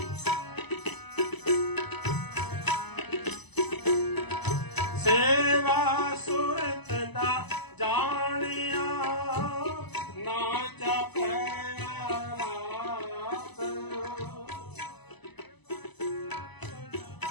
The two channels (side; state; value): right; late; 0.99 ms